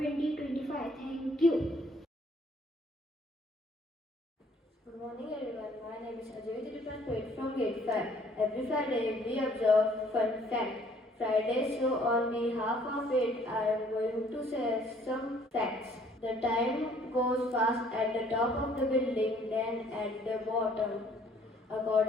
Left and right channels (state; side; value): normal; both; correlation 0.60